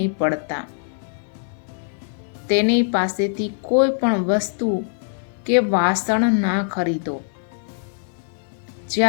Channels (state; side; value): silent; right; 64 dB below the other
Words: પડતા. તેની પાસેથી કોઈ પણ વસ્તુ કે વાસણ ના ખરીદો.